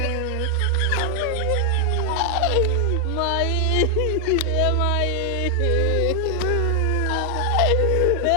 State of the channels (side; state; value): both; different; correlation 0.00